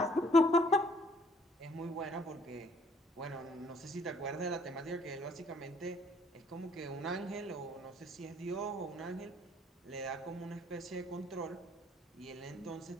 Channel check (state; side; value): normal; both; correlation 0.61